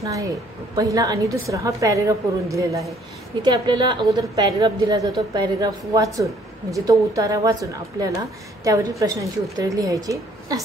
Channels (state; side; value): normal; both; correlation 0.62